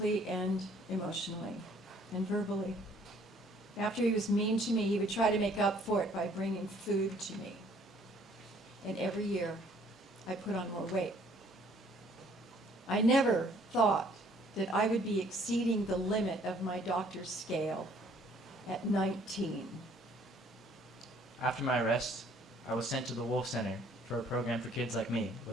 and emotionally and verbally. After he was mean to me, he would try to make up for it by bringing food to me. And every year, I put on more weight. I never thought that I would be exceeding the limit of my doctor's scale at 19. After my arrest, I was sent to the Wolf Center for a program for kids like me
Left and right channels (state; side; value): normal; both; correlation 0.60